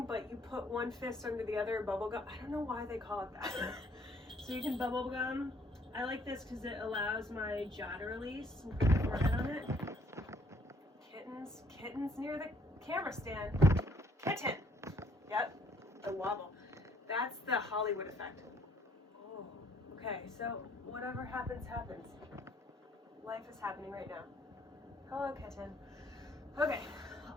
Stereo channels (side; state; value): both; normal; correlation 0.64